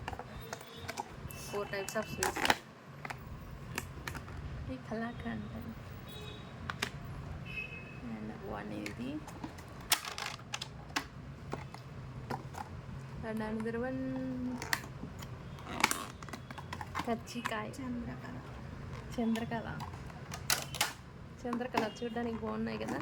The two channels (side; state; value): both; identical; correlation 1.00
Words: 4 టైప్స్ ఆఫ్ స్వీట్స్. ఇది కలాకండ్ అండ్ 1 ఇది అండ్ అనదర్ 1 కజ్జికాయ. చంద్రకళ చూడడానికి బాగున్నాయి కదా,